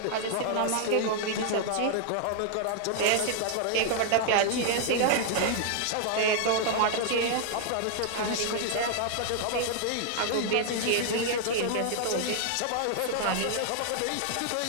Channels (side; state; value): both; different; correlation -0.01